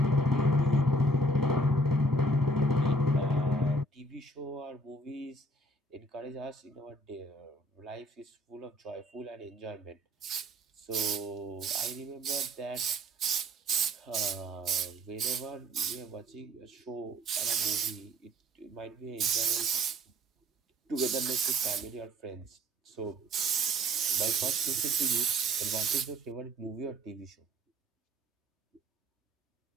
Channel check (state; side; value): normal; both; correlation 0.57